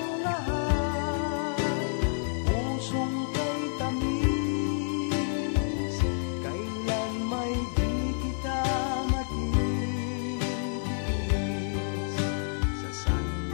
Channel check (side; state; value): right; silent; 59 dB below the other